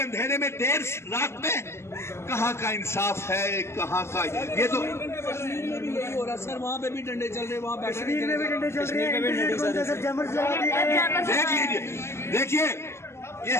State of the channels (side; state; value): right; late; 0.13 ms